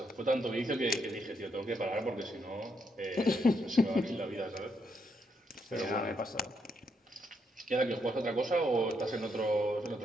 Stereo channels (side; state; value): both; normal; correlation 0.77